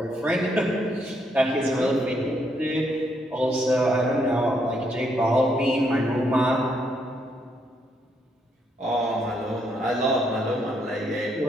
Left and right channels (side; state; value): both; normal; correlation 0.74